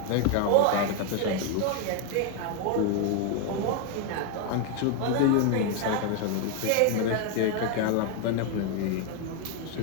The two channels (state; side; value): different; both; correlation 0.01